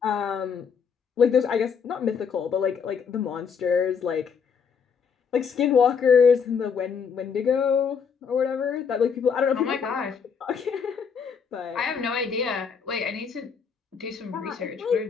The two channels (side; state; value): right; quieter; 6.4 dB